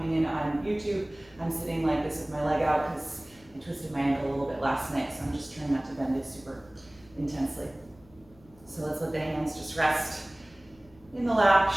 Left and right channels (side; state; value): left; noise; hum, 26 dB below the sound